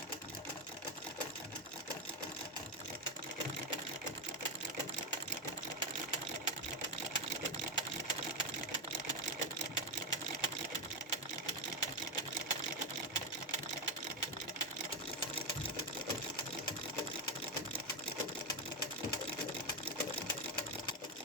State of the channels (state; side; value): normal; both; correlation 0.07